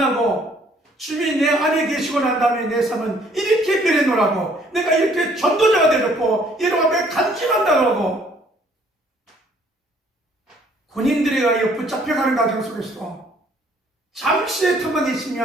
주님이 내 안에 계시고 난 다음에 내 삶은 이렇게 변해노라고, 내가 이렇게 전도자가 되었고 여러분 앞에 간증한다고 군인들에 의하여 붙잡혀가는 과정 속에서 잠시의 틈만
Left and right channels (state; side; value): normal; both; correlation 0.61